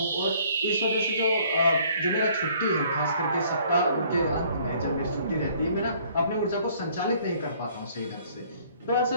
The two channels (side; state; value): both; inverted; correlation -0.59